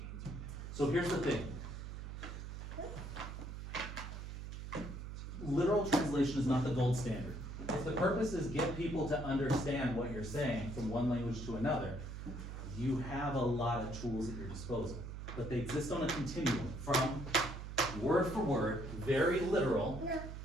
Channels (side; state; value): right; noise; hum, 8 dB below the sound